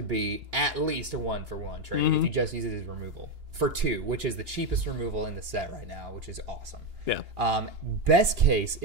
be at least a 1-for-1 trade if you just use it as removal. For 2, which is the cheapest removal in the set right now, which is awesome. Yeah. Best case,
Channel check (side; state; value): left; late; 2.9 ms